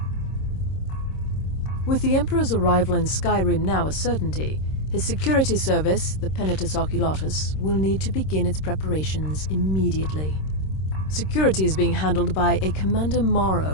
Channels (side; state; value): right; late; 26 ms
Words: With the Emperor's arrival in Skyrim now a certainty, his security service, the Penitus Oculatus, will need to begin its preparations immediately. Security is being handled by a Commander